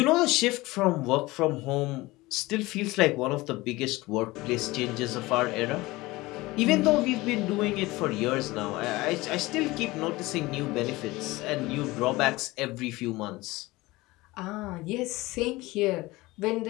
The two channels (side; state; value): right; quieter; 20.5 dB